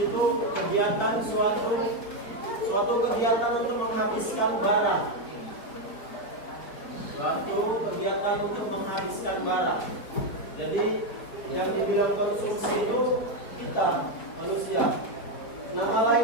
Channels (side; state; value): right; late; 4.8 ms